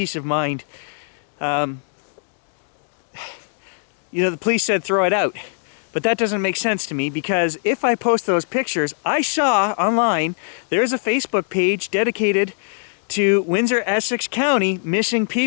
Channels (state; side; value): silent; right; 65 dB below the other